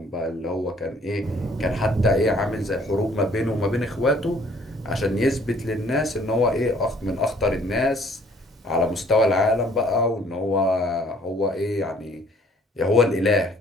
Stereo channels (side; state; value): both; normal; correlation 0.58